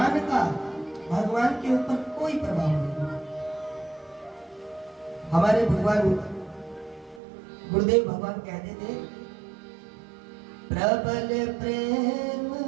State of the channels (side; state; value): left; drops out; at 7.2 s